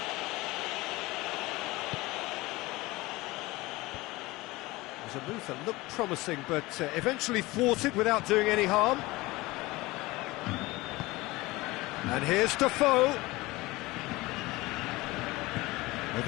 It was a move that looked promising, but eventually thwarted without doing any harm. And here's Defoe.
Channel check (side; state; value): right; quieter; 20.8 dB